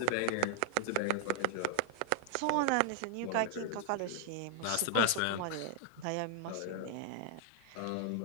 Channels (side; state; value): both; different; correlation 0.00